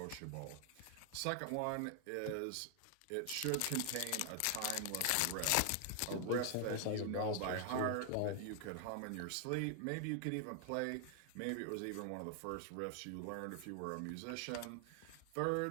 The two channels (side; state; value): both; different; correlation 0.00